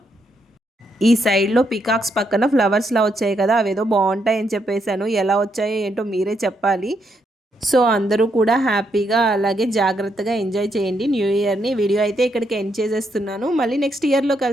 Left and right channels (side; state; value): both; normal; correlation 0.78